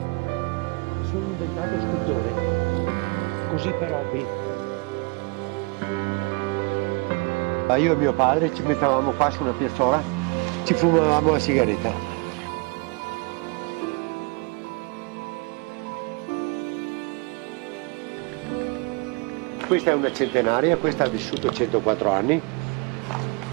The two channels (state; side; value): quieter; left; 30.0 dB